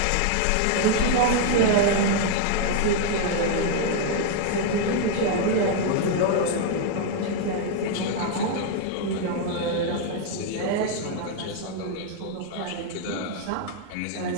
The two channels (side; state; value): both; different; correlation 0.00